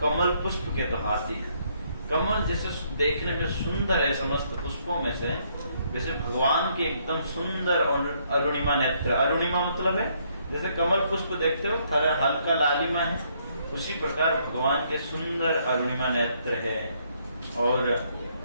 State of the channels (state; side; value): inverted; both; correlation -0.70